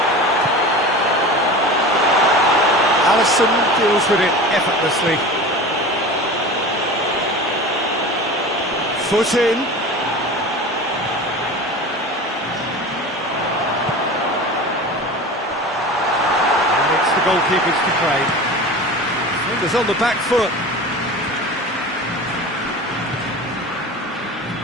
Alisson deals with it effortlessly. Foot in. And it's the goalkeepers to claim. Fingers on the back foot.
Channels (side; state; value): both; normal; correlation 0.34